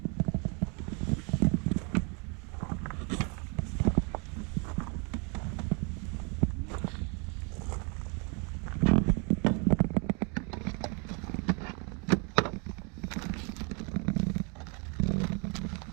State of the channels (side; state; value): left; quieter; 34.6 dB